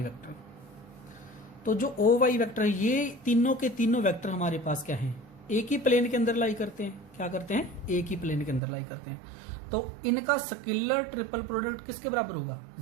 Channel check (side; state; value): left; drops out; at 8.6 s